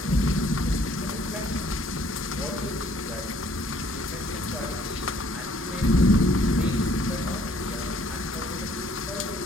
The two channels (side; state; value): both; normal; correlation 0.61